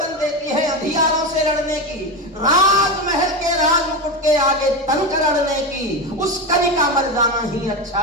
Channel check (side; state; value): both; normal; correlation 0.17